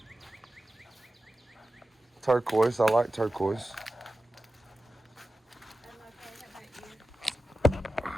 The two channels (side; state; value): both; normal; correlation 0.94